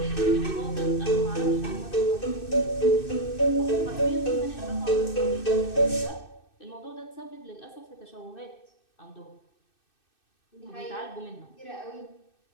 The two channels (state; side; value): late; right; 2.6 ms